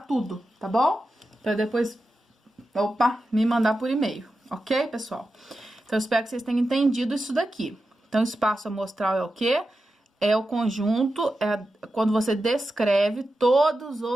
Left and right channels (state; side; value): normal; both; correlation 0.91